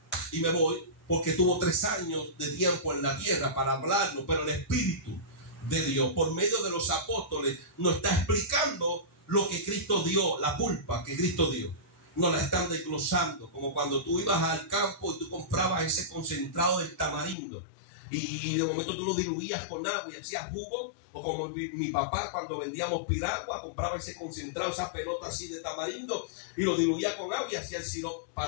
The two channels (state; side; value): drops out; right; at 17.4 s